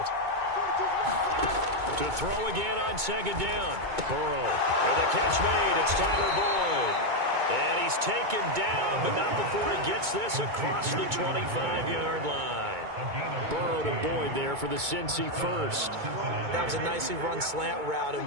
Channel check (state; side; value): late; left; 2.2 ms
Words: To throw again on second down. Burrow. And the catch made. It's Tyler Boyd. And he's taken down, but not before he gets this across the 25-yard line. Burrow to Boyd there for the Cincy first. That was a nicely run slant route, and